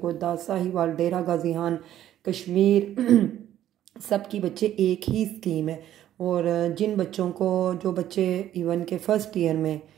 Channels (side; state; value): left; quieter; 12.0 dB